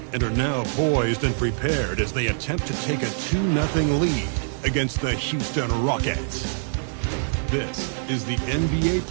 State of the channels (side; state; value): left; silent; digital silence